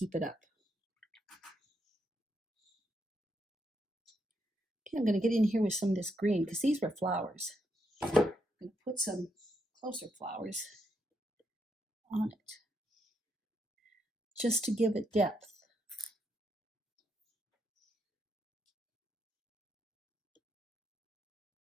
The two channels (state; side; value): normal; both; correlation 0.79